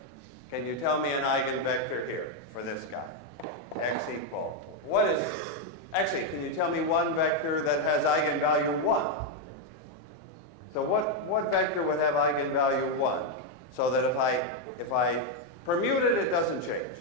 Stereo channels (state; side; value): normal; both; correlation 0.02